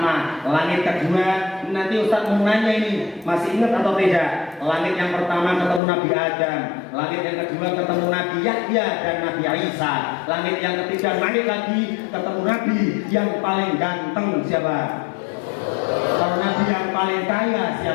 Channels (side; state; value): right; drops out; at 5.8 s